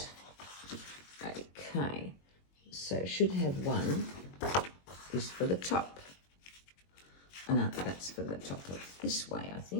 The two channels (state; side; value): late; right; 21 ms